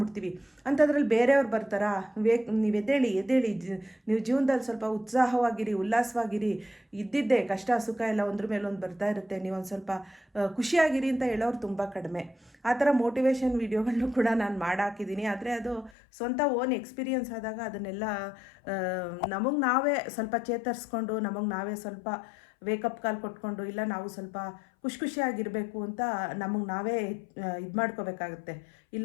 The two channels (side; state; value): right; drops out; at 15.9 s